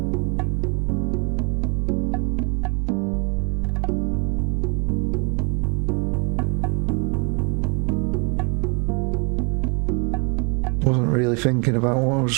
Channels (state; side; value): quieter; left; 33.9 dB